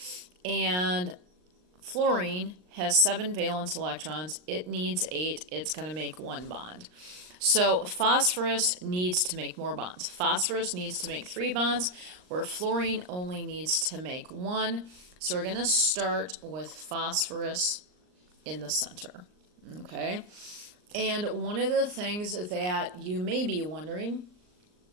And fluorine has 7 valence electrons. It needs 8. It's going to make 1 bond. So phosphorus needs to make more bonds. Phosphorus needs to make 3 bonds, where fluorine only needs to make 1. So we're going to start with phosphorus in the center. Okay? And one of the things that you may be wondering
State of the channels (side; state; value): left; late; 39 ms